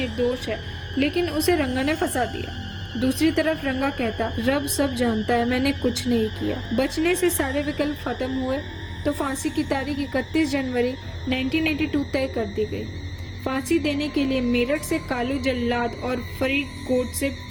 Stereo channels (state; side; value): identical; both; correlation 1.00